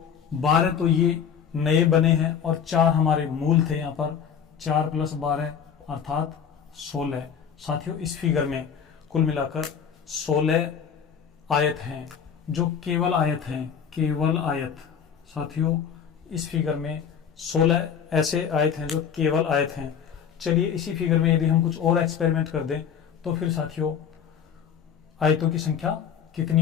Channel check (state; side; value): quieter; right; 7.6 dB